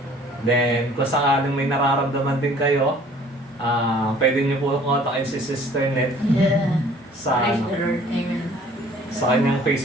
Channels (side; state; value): both; normal; correlation 0.53